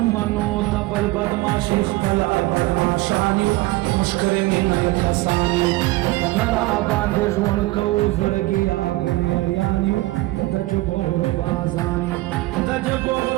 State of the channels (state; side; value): quieter; left; 20.1 dB